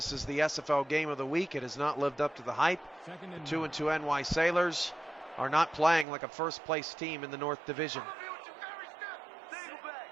is the SFL game of the week. It has not lived up to the hype. 2-2 NY Sailors are not playing like a first-place team in the North Division.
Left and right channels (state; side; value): drops out; left; at 6.1 s